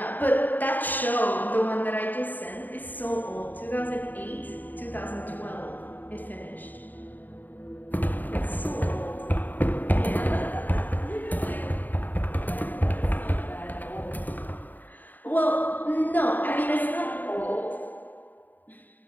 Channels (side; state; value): right; late; 0.087 ms